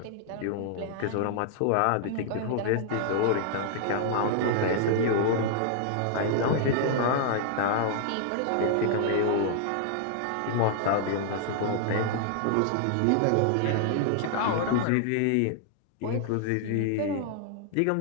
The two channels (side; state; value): both; different; correlation 0.00